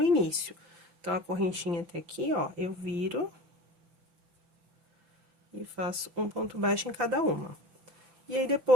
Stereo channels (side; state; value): left; late; 5.8 ms